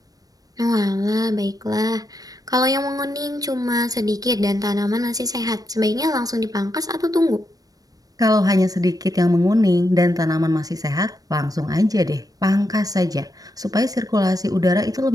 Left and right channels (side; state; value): left; late; 0.18 ms